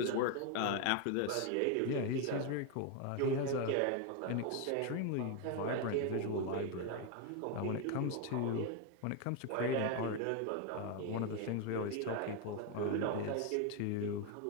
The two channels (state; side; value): different; both; correlation 0.01